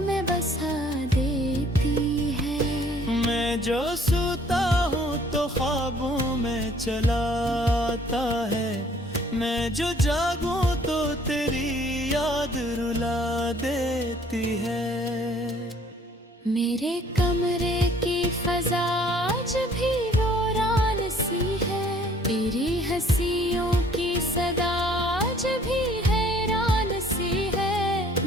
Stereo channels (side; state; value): both; normal; correlation 0.58